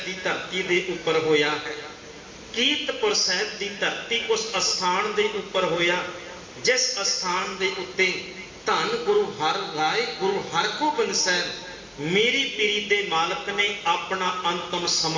की धरती के उपर होया है। कीरतपुर साहब की धरती उस अस्थान के उपर होया जिस अस्थान के उत्ते धन गुरु हर राय गुरु हरगोबिंद साहब मेरी पीरी के मालक ने अपना अंतिम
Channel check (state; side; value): identical; both; correlation 1.00